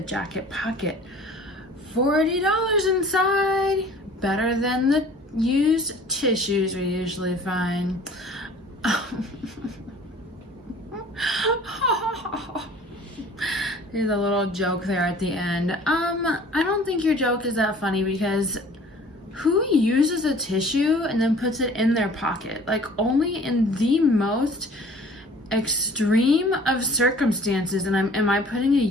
jacket pocket. $40 inside. Better than the used tissues we usually find. There's a little joke there at the end. I don't think your joke is that funny because who uses a tissue and then puts it in their pocket? Like, only in the most extreme of circumstances. And am I putting a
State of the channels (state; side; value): normal; both; correlation 0.49